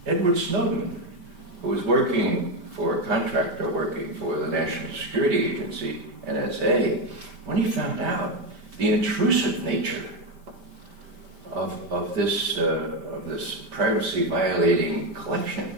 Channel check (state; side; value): late; left; 5.1 ms